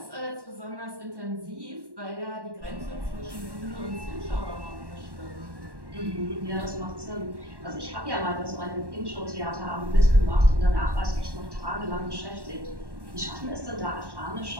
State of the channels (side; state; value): left; late; 1.1 ms